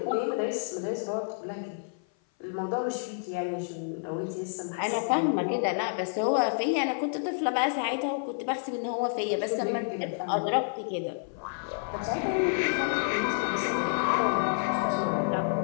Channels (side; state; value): right; silent; 56 dB below the other